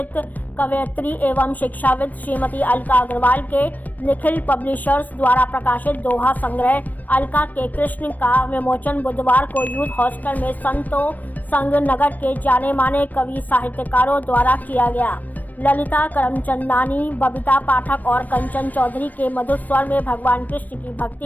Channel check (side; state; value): right; late; 0.082 ms